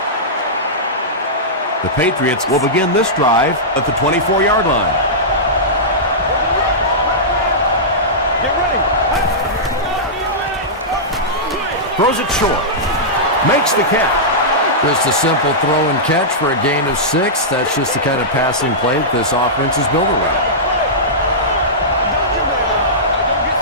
The Patriots will begin this drive at the 24-yard line. Get ready. Throws it short. Makes the catch. Just a simple throw and catch for a gain of 6. That's just the kind of passing play that this offense is built around.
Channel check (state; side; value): normal; both; correlation -0.14